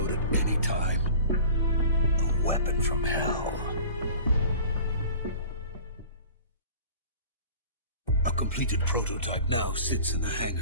at any time. A weapon from hell. A completed prototype now sits in the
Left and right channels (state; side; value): inverted; both; correlation -0.42